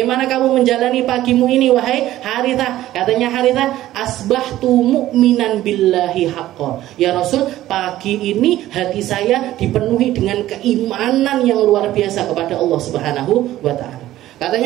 kamu menjalani pagimu ini wahai Harithah? Katanya Harithah, asbahtu mu'minan billahi haqqan. Ya Rasul, pagi ini hati saya dipenuhi dengan keimanan yang luar biasa kepada Allah Subhanahu wa Ta'ala.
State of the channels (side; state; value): left; quieter; 14.4 dB